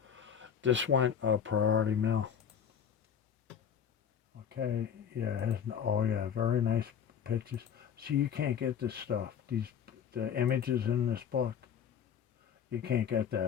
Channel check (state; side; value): quieter; right; 8.0 dB